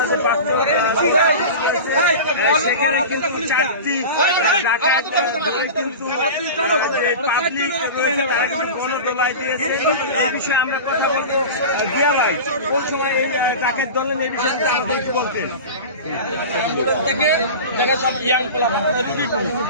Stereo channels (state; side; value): inverted; both; correlation -0.30